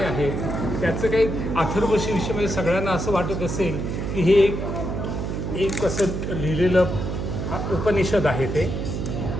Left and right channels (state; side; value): noise; right; hum, 3 dB below the sound